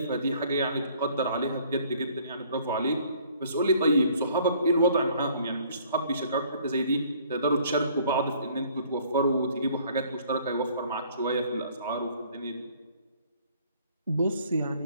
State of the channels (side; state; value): both; inverted; correlation -0.58